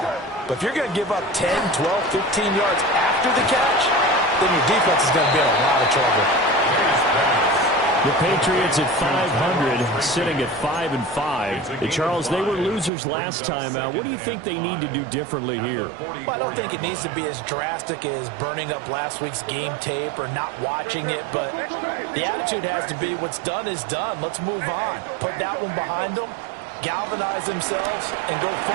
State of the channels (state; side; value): drops out; left; at 12.9 s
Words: But if you're going to give up 10, 12, 15 yards after the catch, then your defense is going to be in a lot of trouble. The Patriots at 500, sitting at 5-5. Charles, they were losers last time out. What do you think they need to do differently here? Well, I don't think it needs to be as drastic as burning up last week's game tape or not watching it, but the attitude has to be what's done is done. Let's move on. Put that one behind them, galvanize themselves, and go